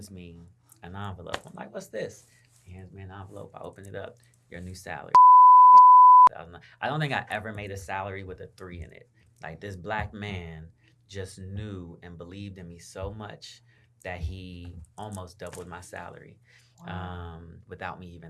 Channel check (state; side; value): identical; both; correlation 1.00